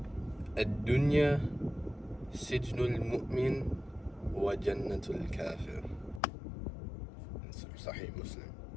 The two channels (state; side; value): drops out; right; at 6.2 s